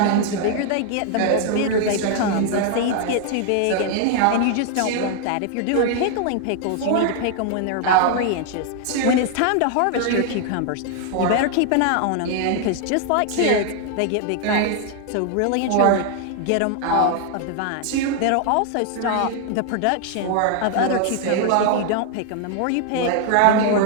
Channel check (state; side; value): different; both; correlation 0.00